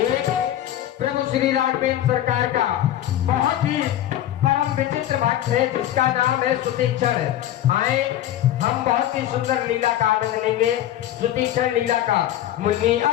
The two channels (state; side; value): quieter; right; 12.4 dB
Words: प्रभु श्री राघवेंद्र सरकार का बहुत ही परम विचित्र भक्त है जिसका नाम है सुतीक्षण। आए हम बहुत ही सुंदर लीला का आनंद लेंगे। सुतीक्षण लीला का मुनि